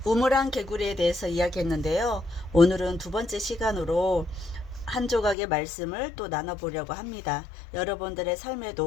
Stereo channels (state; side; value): drops out; right; at 5.4 s